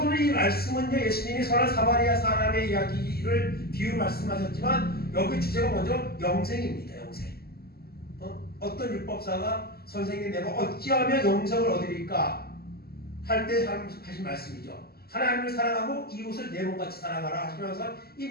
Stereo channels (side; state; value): right; late; 0.45 ms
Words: 오늘 이 말씀은요, 예수님이 선한 사마리아 사람의 이야기를 비유 말씀하셨지만 여기 주제가 먼저 영생입니다. 영생. 어떤 율법사가 선생님 내가 어찌하면 영생을 얻으리까 할 때 하신 말씀이죠. 하나님을 사랑하고 이웃을 내 몸같이 사랑하라 하시면서 이